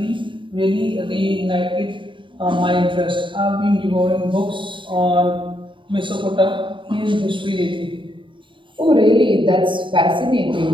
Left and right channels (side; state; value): left; late; 0.24 ms